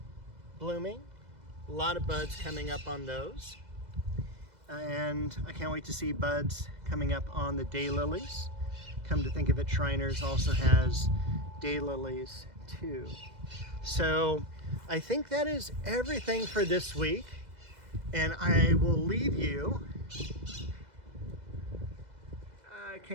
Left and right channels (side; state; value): left; late; 2.0 ms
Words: blooming. A lot of buds coming up on those. And I can't wait to see buds coming up on the daylilies. Come to think of it, Shriners also has daylilies too. So I think that is everything for this week. And I will leave you, I